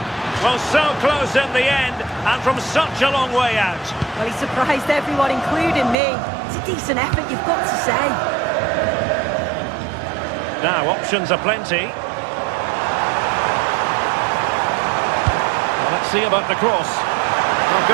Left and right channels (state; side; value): drops out; left; at 6.0 s